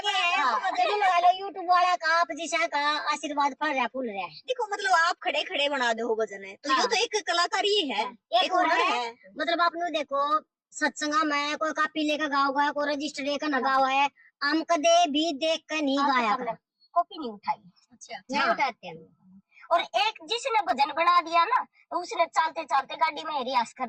है, जरूर लगा लो यूट्यूब वाला का आप जिसा का आशीर्वाद पड़ रहा फूल रहा है। देखो मतलब आप खड़े खड़े बना दो भजन है तो ये तो एक कलाकारी है, एक और है मतलब आपने देखो सत्संगा में कोई कापी लेकर गाओ गया, कोई रजिस्टर लेकर न गाओ है, हम कदे भी देख कर नहीं गाया, कॉपी नहीं उठाई। अच्छा नहीं उठाते हैं। और एक जिसने भजन बना दिया ना तो उसने चलते चलते गाड़ी में रियाज कर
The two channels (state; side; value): identical; both; correlation 1.00